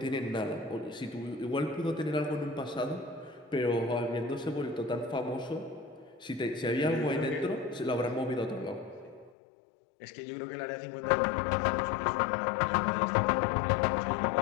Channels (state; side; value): drops out; right; at 9.3 s